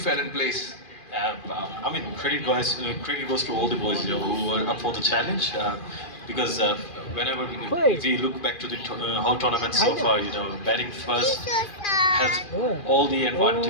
in place. Credit goes to all the boys who were up for the challenge. because whenever we look back to the whole tournament so far, you know, batting first has all the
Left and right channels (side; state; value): right; late; 2.4 ms